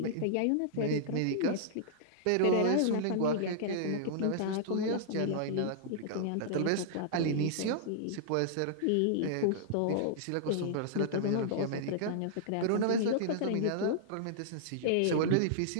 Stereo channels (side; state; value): both; different; correlation -0.01